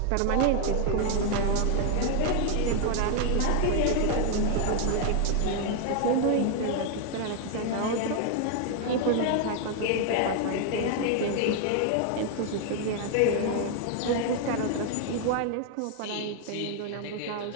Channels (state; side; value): different; both; correlation 0.00